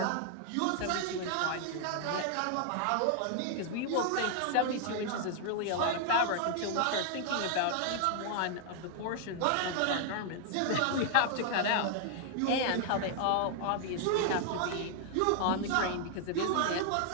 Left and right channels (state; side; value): different; both; correlation 0.00